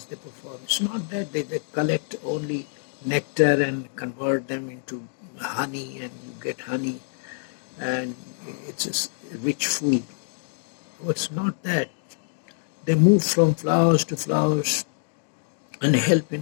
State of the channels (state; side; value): silent; right; digital silence